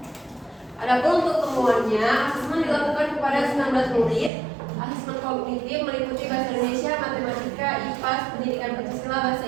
Adapun untuk temuannya, asesmen dilakukan kepada 19 murid. Asesmen kognitif meliputi bahasa Indonesia, matematika, IPA, pendidikan Pancasila, bahasa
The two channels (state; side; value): drops out; left; at 4.3 s